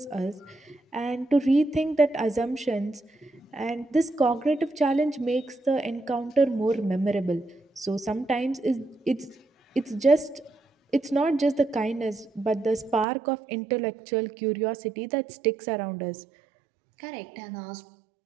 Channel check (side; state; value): left; drops out; at 13.1 s